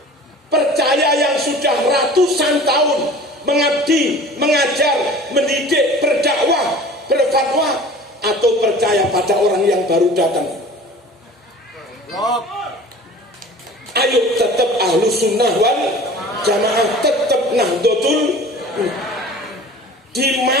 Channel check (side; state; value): both; normal; correlation 0.43